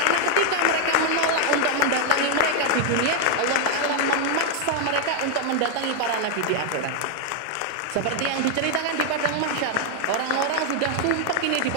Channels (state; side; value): different; both; correlation 0.00